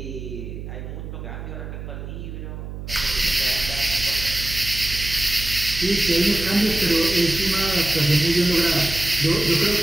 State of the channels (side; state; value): right; noise; hum, 9 dB below the sound